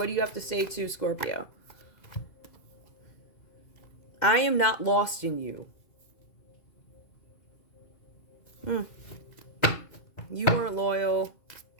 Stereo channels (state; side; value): late; right; 2.0 ms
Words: do you have to say to Scorpio? I am not lost in you. You weren't loyal.